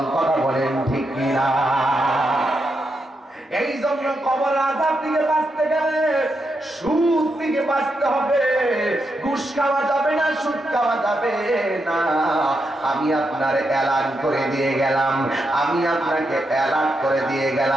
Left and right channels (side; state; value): both; normal; correlation 0.84